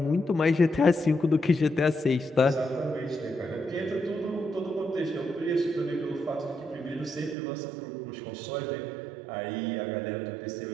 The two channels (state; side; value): drops out; left; at 7.4 s